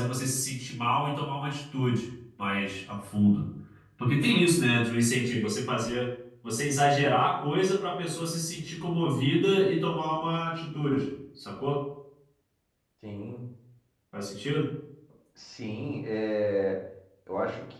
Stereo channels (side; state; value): both; identical; correlation 1.00